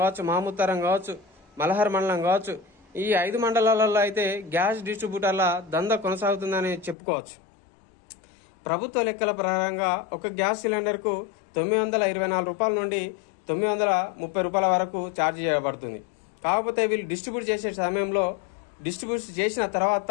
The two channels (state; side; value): drops out; right; at 7.0 s